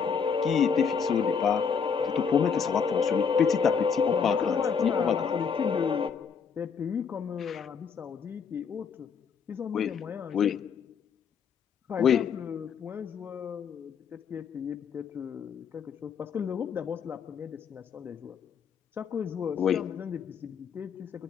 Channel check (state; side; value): quieter; right; 6.4 dB